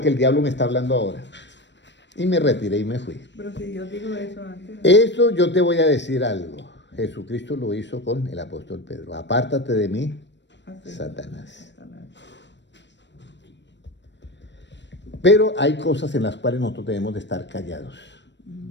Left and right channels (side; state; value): right; late; 0.52 ms